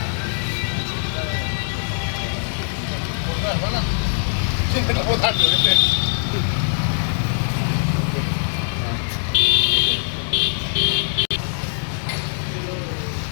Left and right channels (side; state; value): right; silent; digital silence